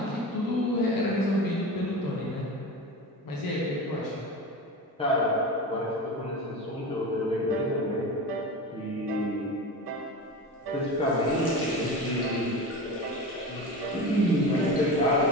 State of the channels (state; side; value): normal; both; correlation 0.28